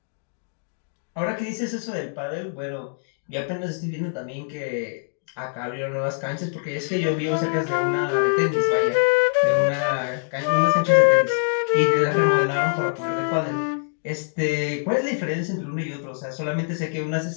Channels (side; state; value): right; silent; digital silence